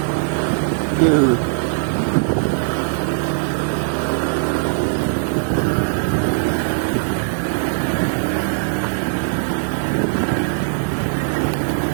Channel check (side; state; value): left; silent; digital silence